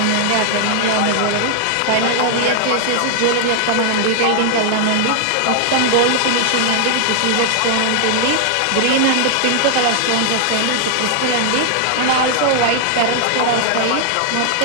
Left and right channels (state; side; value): different; both; correlation 0.00